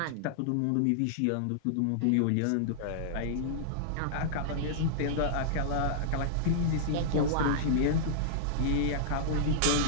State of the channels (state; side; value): different; both; correlation -0.02